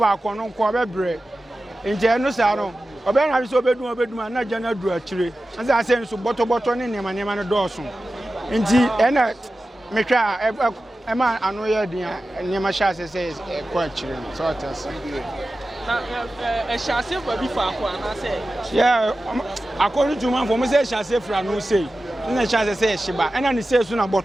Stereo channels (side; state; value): both; normal; correlation 0.94